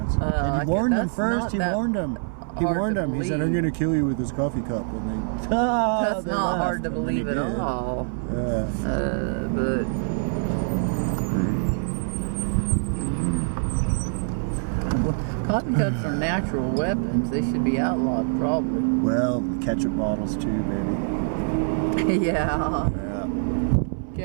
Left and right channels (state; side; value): silent; left; 59 dB below the other